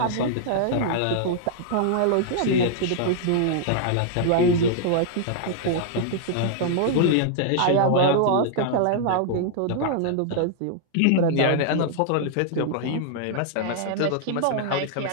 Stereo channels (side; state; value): both; different; correlation -0.01